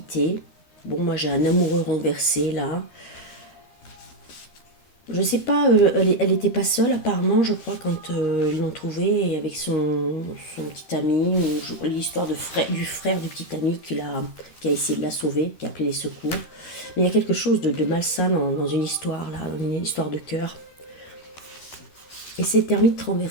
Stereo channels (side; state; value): right; late; 13 ms